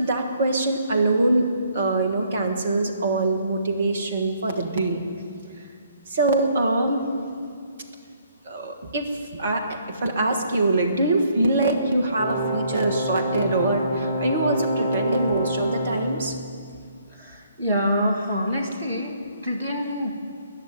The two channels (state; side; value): inverted; both; correlation -0.66